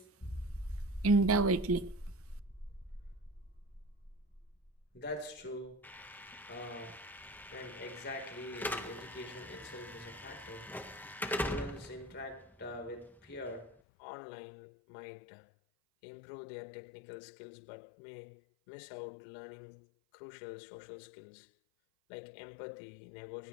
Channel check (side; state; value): right; drops out; at 13.8 s